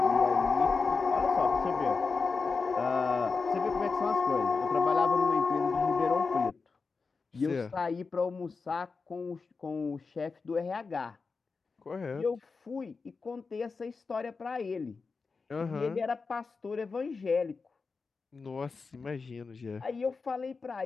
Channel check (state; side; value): quieter; right; 4.6 dB